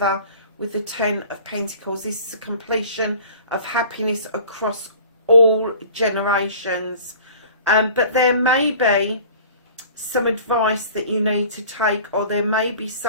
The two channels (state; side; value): inverted; both; correlation -0.45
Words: with the Ten of Pentacles. This is a completion of happiness across all generations. But there may be some advice that you need to take, or there may be